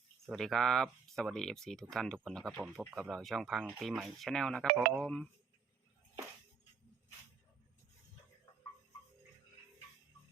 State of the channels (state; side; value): quieter; left; 5.9 dB